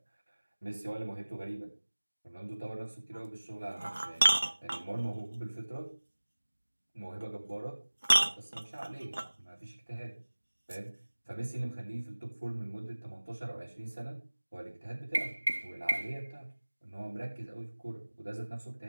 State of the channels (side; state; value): both; inverted; correlation -1.00